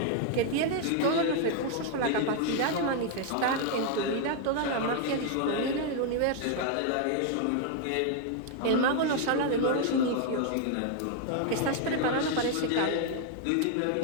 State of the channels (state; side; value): different; both; correlation 0.00